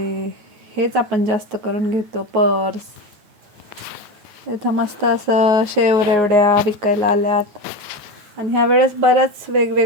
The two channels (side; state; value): left; late; 9.4 ms